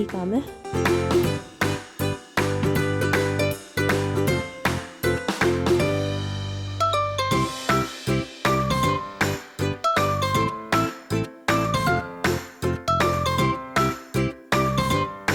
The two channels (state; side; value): identical; both; correlation 1.00